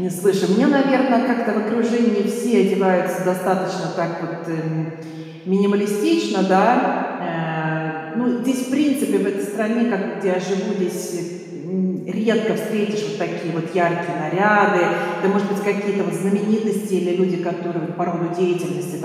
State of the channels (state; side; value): identical; both; correlation 1.00